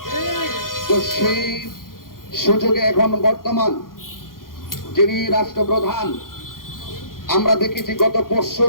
তো সেই সুযোগে এখন বর্তমান যিনি রাষ্ট্রপ্রধান, আমরা দেখেছি গত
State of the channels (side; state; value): right; late; 0.91 ms